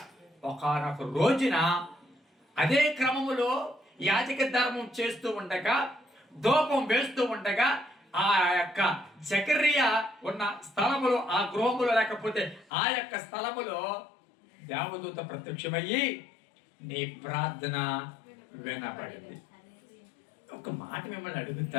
ఒకానొక రోజున అదే క్రమములో యాజక ధర్మం చేస్తూ ఉండగా, ధూపం వేస్తూ ఉండగా ఆ యొక్క జకర్యా ఉన్న స్థలములో, ఆ గృహములో లేకపోతే ఆ యొక్క స్థలములో దేవదూత ప్రత్యక్షమయ్యి నీ ప్రార్థన వినబడింది. ఒక మాట మిమ్మల్ని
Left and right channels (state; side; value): drops out; right; at 12.7 s